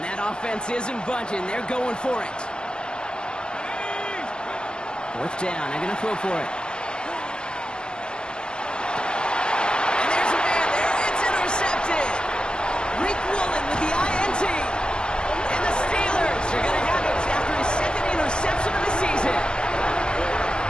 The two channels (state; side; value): late; right; 0.047 ms